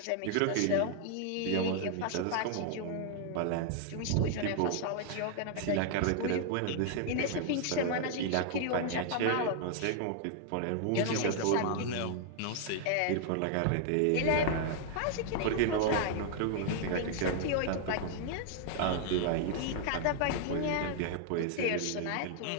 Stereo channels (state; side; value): different; both; correlation 0.00